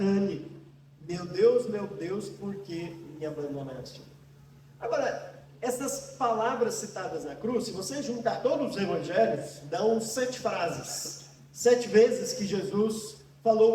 meu Deus, por que me abandonaste? Agora, essas palavras citadas na cruz, se você juntar todos os evangelhos, dão 7 frases. 7 vezes que Jesus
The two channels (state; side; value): identical; both; correlation 1.00